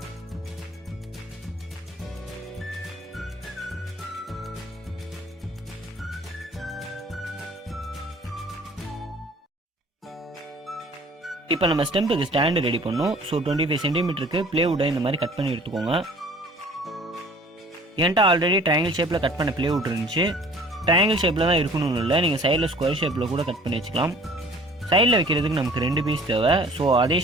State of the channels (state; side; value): normal; both; correlation 0.50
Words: இப்போ நம்ம ஸ்டெம்புக்கு ஸ்டாண்டு ரெடி பண்ணோம். ஸோ 25 சென்டிமீட்டருக்கு பிளேவுட்டை இந்த மாதிரி கட் பண்ணி எடுத்துக்கோங்க. என்கிட்ட ஆல்ரெடி ட்ரையாங்கிள் ஷேப்பில் கட் பண்ண பிளேவுட் இருந்துச்சு. ட்ரையாங்கிள் ஷேப்பில் தான் இருக்கணும்னு இல்லை, நீங்கள் சைடில் ஸ்கொயர் ஷேப்பில் கூட கட் பண்ணி வச்சுக்கலாம். சைடில் வைக்கிறதுக்கு நமக்கு 2 பீஸ் தேவை. ஸோ அதே